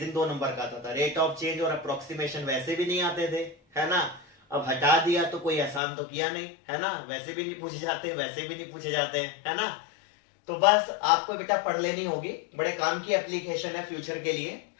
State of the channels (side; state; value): right; drops out; at 5.8 s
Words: 2 नंबर का आता था। रेट ऑफ चेंज और अप्रोक्सीमेशन वैसे भी नहीं आते थे, है ना। अब हटा दिया तो कोई आसान तो किया नहीं, है ना। वैसे भी नहीं पूछे जाते, वैसे भी नहीं पूछे जाते हैं, है ना। तो बस आपको बेटा पढ़ लेनी होगी, बड़े काम की एप्लीकेशन है फ्यूचर के लिए,